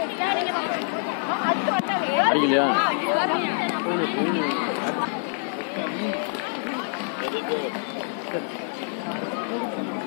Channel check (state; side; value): silent; right; 61 dB below the other